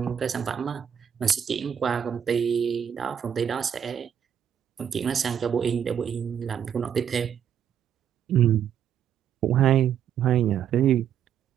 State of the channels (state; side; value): quieter; left; 8.8 dB